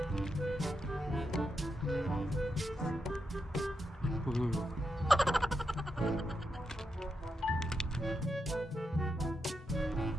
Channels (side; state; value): both; normal; correlation 0.85